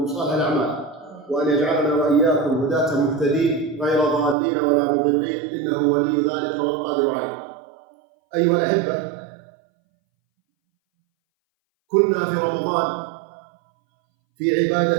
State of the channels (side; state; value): left; drops out; at 4.4 s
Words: صالح الأعمال، وأن يجعلنا وإياكم هداة مهتدين غير ضالين ولا مضلين، إنه ولي ذلك والقادر عليه. أيها الأحبة، كنا في رمضان في